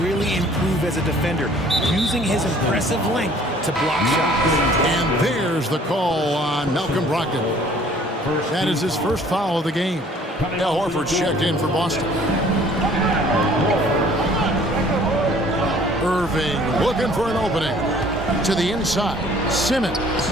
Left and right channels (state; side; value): normal; both; correlation 0.54